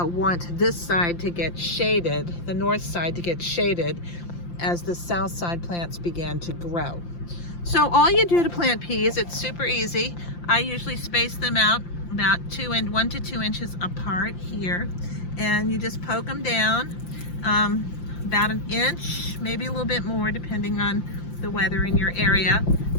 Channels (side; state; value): right; late; 5.8 ms